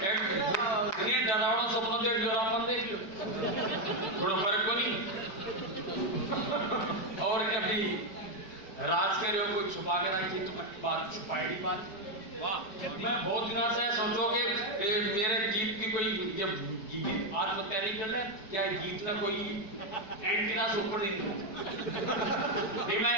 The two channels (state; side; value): late; right; 5.2 ms